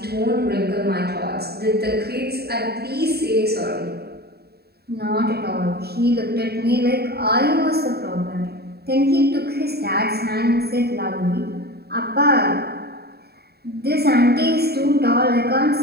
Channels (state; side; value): late; left; 0.46 ms